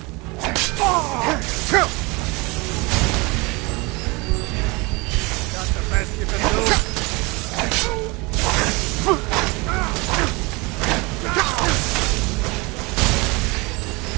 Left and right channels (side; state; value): left; quieter; 26.1 dB